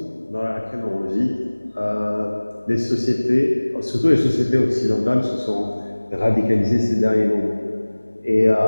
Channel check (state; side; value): inverted; both; correlation -1.00